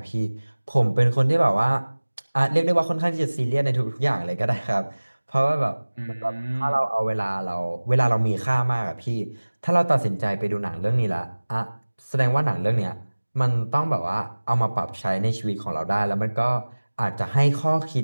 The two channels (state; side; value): inverted; both; correlation -1.00